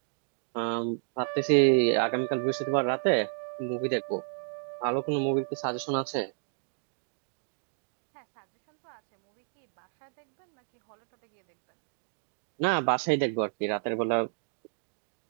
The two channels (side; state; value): left; silent; 57 dB below the other